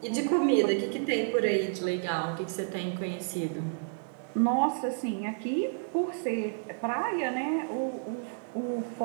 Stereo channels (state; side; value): silent; left; digital silence